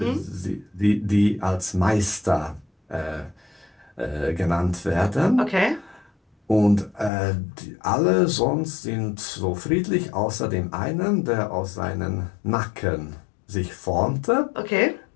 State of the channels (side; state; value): right; drops out; at 7.1 s